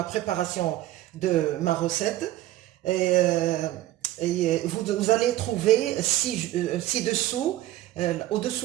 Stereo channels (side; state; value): left; quieter; 15.1 dB